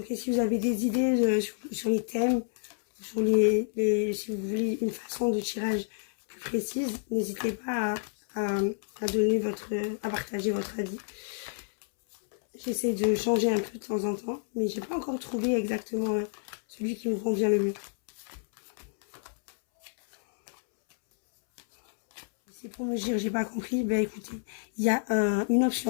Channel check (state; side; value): silent; right; 58 dB below the other